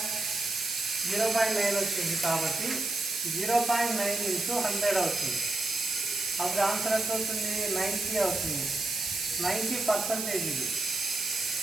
0.9 వచ్చింది. కాబట్టి 0.9 ఇంటూ 100 అవుతుంది. అప్పుడు ఆన్సర్ ఎంత అవుతుంది, 90 అవుతుంది. 90% ఇది.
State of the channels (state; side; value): noise; right; hiss, 4 dB below the sound